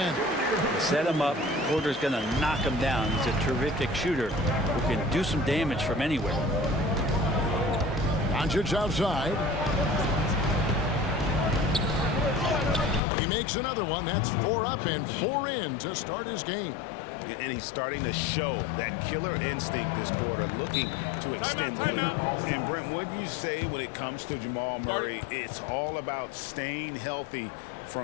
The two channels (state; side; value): drops out; right; at 13.0 s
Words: Set him up. Porter's going to knock him down. He's a terrific shooter who can do some damage from anywhere. Doncic outside. He makes another one. That's 4 up and 4 in to start his game. And he's starting to show that killer instinct this quarter, looking to extend the lead. And Brent, what do you say when it comes to Jamal Murray? It's all about staying healthy